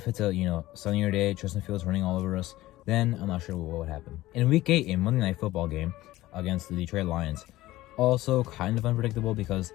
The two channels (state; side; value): quieter; right; 16.8 dB